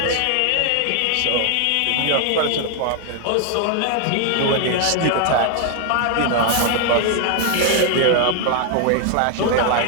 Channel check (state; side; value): different; both; correlation 0.00